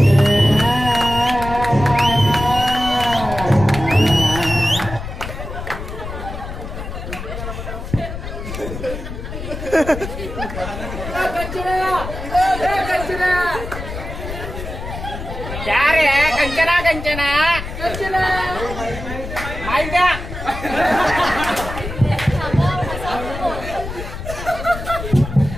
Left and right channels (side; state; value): left; noise; rumble, 8 dB below the sound